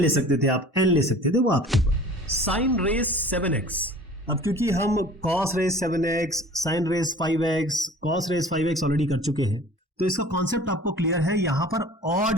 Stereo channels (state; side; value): normal; both; correlation 0.45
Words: सकते थे आप, n ले सकते थे, वो आपके ऊपर। साइन रेस 7x, अब क्योंकि हम cos raise 7x, sine raise 5x, cos raise 5x already कर चुके हैं, तो इसका कॉन्सेप्ट आपको क्लियर है। यहां पर